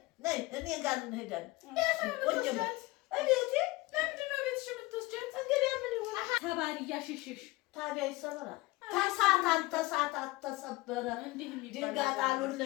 ነይ እኔ ጋር እንሄዳለን። ለምንድን ነው ቤትሽ የምትወስጃት? እንግዲህ ምን ይሆን ተባሪ እያሸሸሽ ታዲያ ይሰበራል። ተሳታት ተሰበረ። ድንጋይ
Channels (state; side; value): quieter; right; 21.3 dB